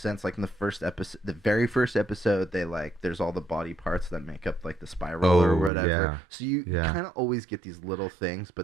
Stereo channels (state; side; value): drops out; left; at 5.7 s